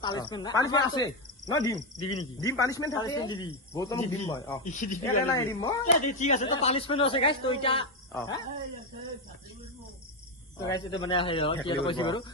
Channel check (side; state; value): both; normal; correlation 0.08